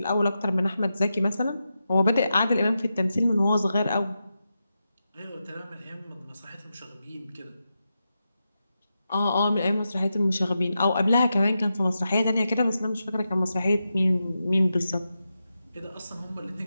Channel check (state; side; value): inverted; both; correlation -0.89